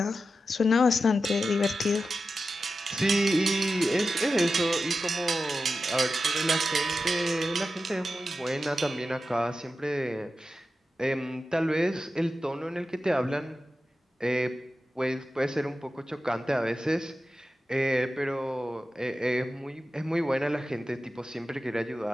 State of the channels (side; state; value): both; normal; correlation 0.92